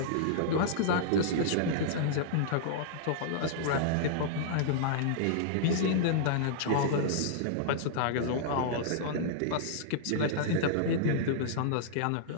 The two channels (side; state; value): both; different; correlation -0.02